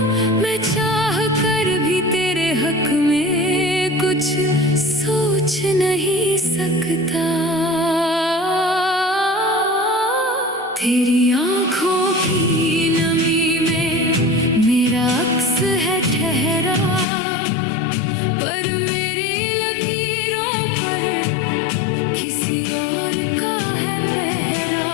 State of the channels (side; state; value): right; drops out; at 17.1 s